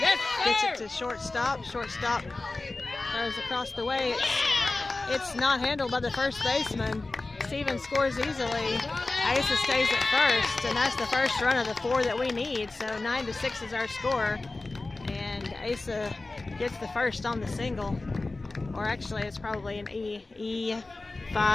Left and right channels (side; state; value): right; quieter; 3.3 dB